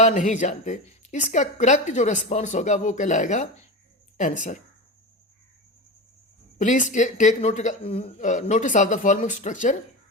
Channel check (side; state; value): both; normal; correlation 0.25